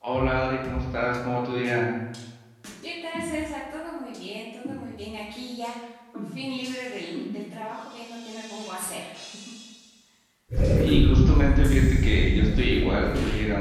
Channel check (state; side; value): identical; both; correlation 1.00